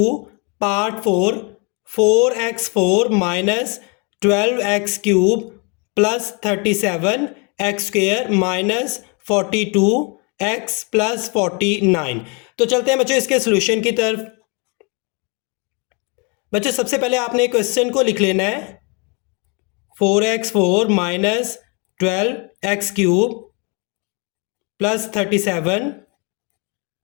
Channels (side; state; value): right; quieter; 32.9 dB